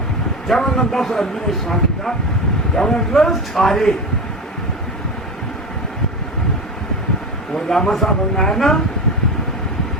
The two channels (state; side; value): normal; both; correlation 0.23